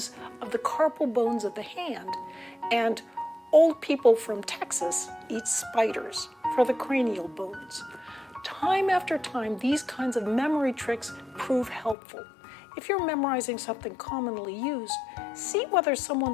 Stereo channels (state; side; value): drops out; right; at 12.0 s